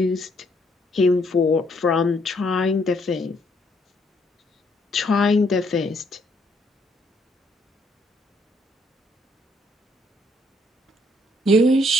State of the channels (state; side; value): normal; both; correlation 0.69